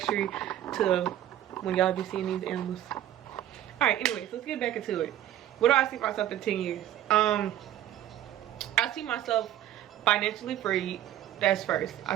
to when y'all be seeing these animals. Alright, anyways, let's get back into it. What do I see myself in 10 years? I see myself financially free. That's first. I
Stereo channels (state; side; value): quieter; left; 12.3 dB